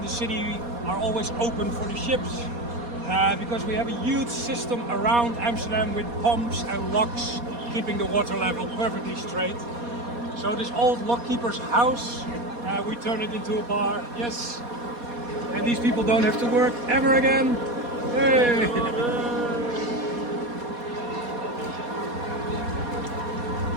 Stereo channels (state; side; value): late; left; 4.2 ms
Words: the city are always open for the ships. Because we have a huge system around Amsterdam with pumps and locks keeping the water level perfectly straight. So this old lockkeeper's house, we turned it into a bar, yes. And these people don't have to work ever again. Hey!